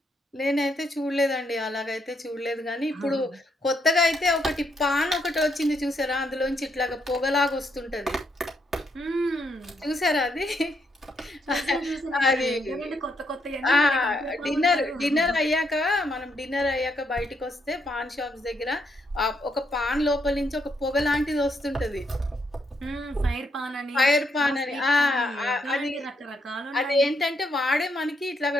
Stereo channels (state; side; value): normal; both; correlation 0.77